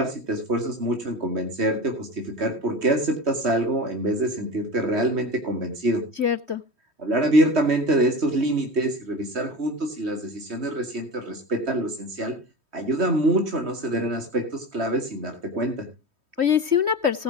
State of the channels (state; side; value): late; left; 3.1 ms